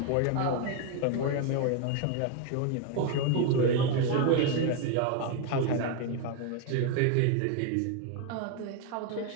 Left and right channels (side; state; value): both; different; correlation 0.01